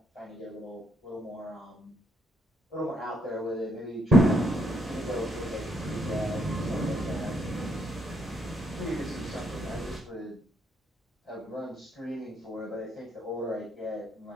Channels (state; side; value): normal; both; correlation 0.72